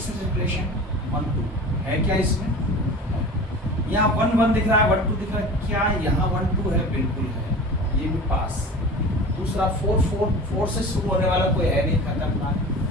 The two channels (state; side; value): normal; both; correlation 0.36